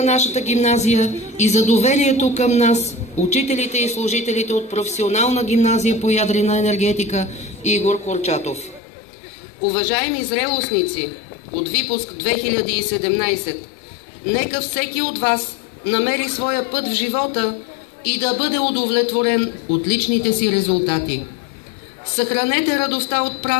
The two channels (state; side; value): drops out; right; at 8.8 s